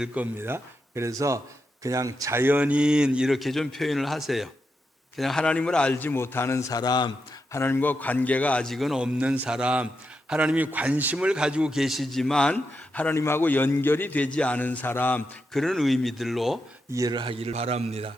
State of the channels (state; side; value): normal; both; correlation 0.85